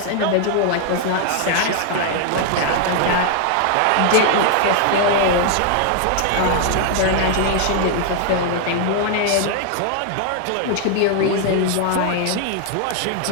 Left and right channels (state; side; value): different; both; correlation 0.00